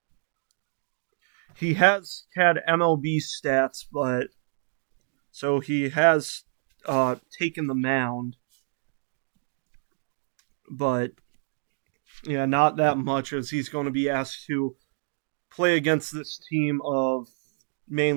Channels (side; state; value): left; silent; digital silence